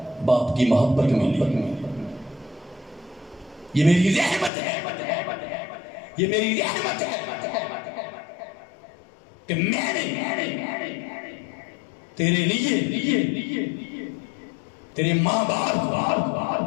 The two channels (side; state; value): right; drops out; at 4.5 s